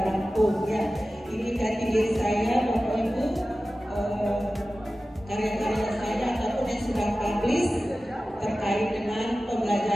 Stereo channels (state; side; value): normal; both; correlation 0.95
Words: Lampung ya. Ini jati diri saya, Bapak Ibu, karya-karya saya ataupun yang sudah publish terkait dengan